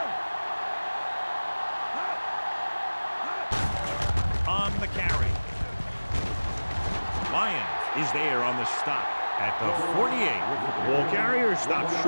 On the carry. Lyons is there on the stop at the 48. Ball carrier stops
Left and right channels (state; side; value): inverted; both; correlation -1.00